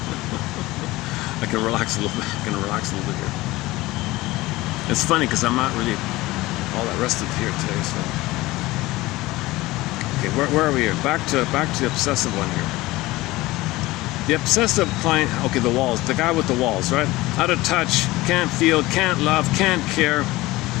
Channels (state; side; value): quieter; right; 19.2 dB